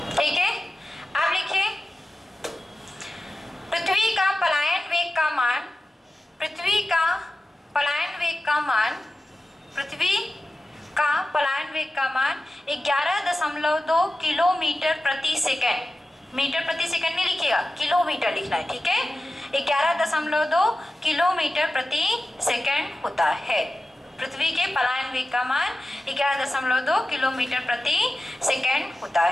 ठीक है, अब लिखिए, पृथ्वी का पलायन वेग का मान, पृथ्वी का पलायन वेग का मान, पृथ्वी का पलायन वेग का मान 11.2 किलोमीटर प्रति सेकंड। मीटर प्रति सेकंड नहीं लिखिएगा, किलोमीटर लिखना है। ठीक है, 11.2 किलोमीटर प्रति सेकंड होता है। पृथ्वी के पलायन वेग का मान 11.2 किलोमीटर प्रति सेकंड होता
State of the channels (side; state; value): both; normal; correlation 0.94